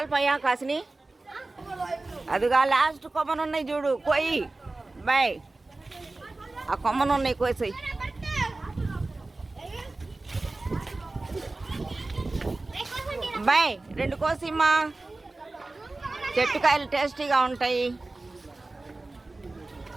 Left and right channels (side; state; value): left; quieter; 3.2 dB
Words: కాసిని? అదిగా లాస్ట్ కొమ్మనున్నాయి చూడు, కోయి బాయ్. ఆ కొమ్మనున్నాయి కోసాయి. బాయ్ 2 కోసిమ్మా. చెట్టు కాయలు టేస్టీగా ఉంటాయి.